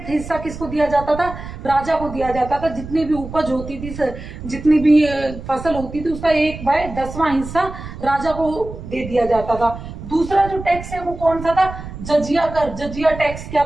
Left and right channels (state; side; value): noise; right; rumble, 11 dB below the sound